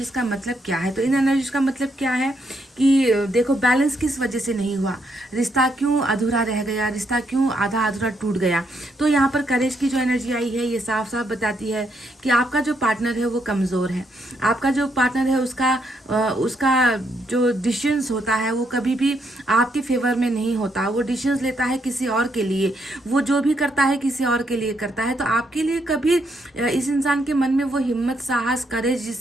का मतलब क्या है। तो इन एनर्जीज का मतलब क्या है कि देखो, बैलेंस किस वजह से नहीं हुआ, रिश्ता क्यों अधूरा रह गया, रिश्ता क्यों आधा अधूरा टूट गया। तो यहाँ पर करेज की जो एनर्जी आई है ये साफ साफ बताती है कि आपका जो पार्टनर है वो कमज़ोर है। आपका जो पार्टनर है उसका जो डिसीजंस होता है वो कभी भी आपके फेवर में नहीं होता। वो डिसीजंस लेता है किसी और के लिए, वो जो भी करता है किसी और के लिए करता है। तो आपके लिए कभी इस इंसान के मन में वो हिम्मत, साहस, करेज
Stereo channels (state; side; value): normal; both; correlation 0.76